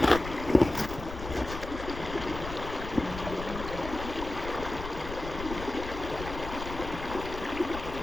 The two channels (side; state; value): left; noise; rumble, 9 dB below the sound